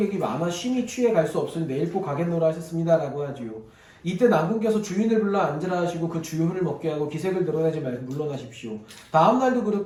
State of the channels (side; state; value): both; identical; correlation 1.00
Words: 많아 쉼이 취해 갈 수 없으니 내일 꼭 가겠노라 하셨습니다. 라고 하지요. 이때 난군께서 주인을 불러 앉으라 하시고 그 주효를 먹게 하고 기색을 드러내지 말고 물러나십시오. 다음날도